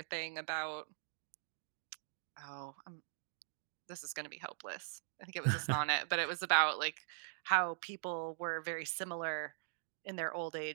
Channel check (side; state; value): left; silent; digital silence